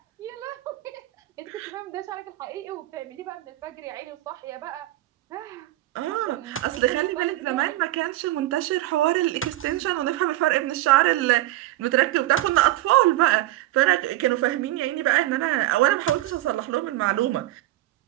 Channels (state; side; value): quieter; left; 16.2 dB